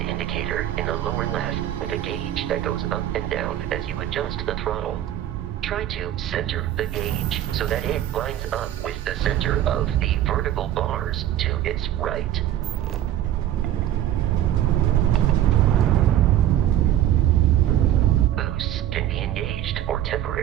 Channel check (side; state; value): left; quieter; 12.2 dB